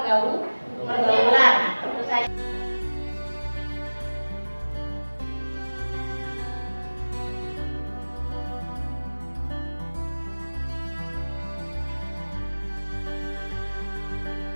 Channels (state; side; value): inverted; both; correlation -1.00